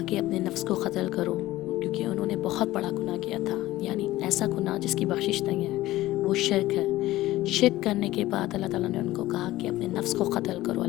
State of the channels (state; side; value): quieter; right; 16.5 dB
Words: کہ اپنے نفس کو قتل کرو، کیونکہ انہوں نے بہت بڑا گناہ کیا تھا، یعنی ایسا گناہ جس کی بخشش نہیں ہے، وہ شرک ہے۔ شرک کرنے کے بعد اللہ تعالیٰ نے ان کو کہا کہ اپنے نفس کو قتل کرو